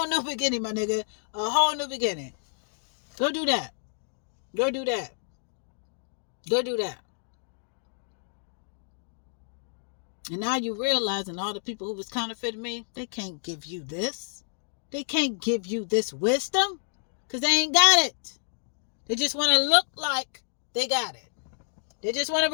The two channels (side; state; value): right; silent; digital silence